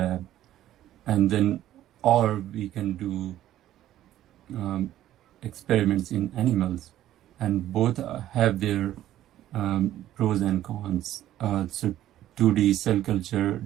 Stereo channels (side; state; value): left; quieter; 12.9 dB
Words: and then, or we can do experiments in animals, and both have their pros and cons. So 2D cell culture